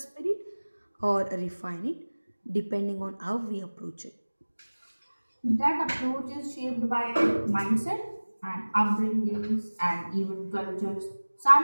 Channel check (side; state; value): both; inverted; correlation -1.00